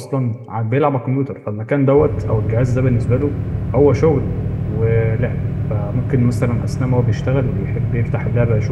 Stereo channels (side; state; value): both; identical; correlation 1.00